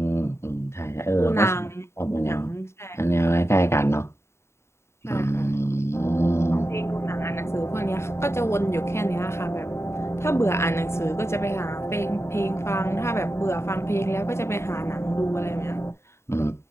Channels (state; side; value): late; right; 0.13 ms